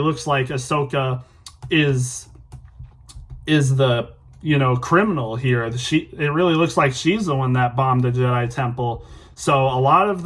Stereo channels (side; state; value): both; identical; correlation 1.00